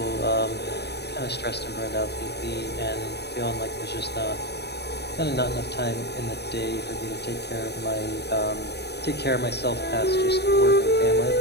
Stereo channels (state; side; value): late; right; 0.48 ms